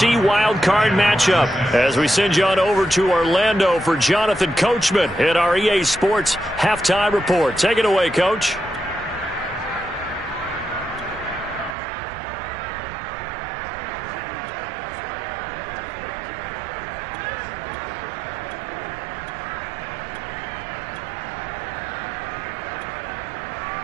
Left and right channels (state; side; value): drops out; left; at 11.8 s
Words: wildcard matchup as we send you on over to Orlando for Jonathan Coachman at our EA Sports Halftime Report. Take it away, Coach.